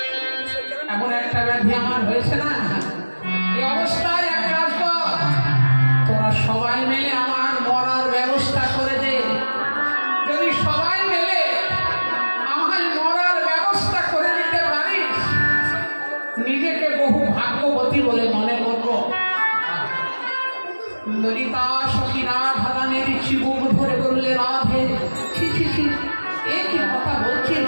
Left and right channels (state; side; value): inverted; both; correlation -1.00